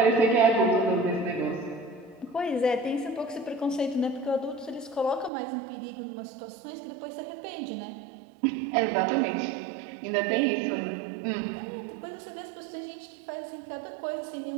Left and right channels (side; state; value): left; drops out; at 5.3 s